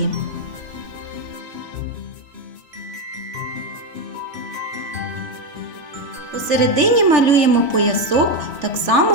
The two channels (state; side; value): late; left; 3.4 ms